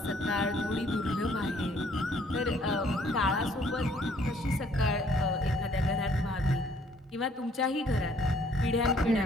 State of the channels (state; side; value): normal; both; correlation 0.62